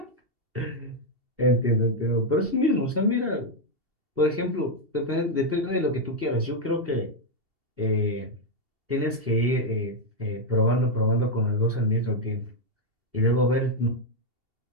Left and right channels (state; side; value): late; left; 2.7 ms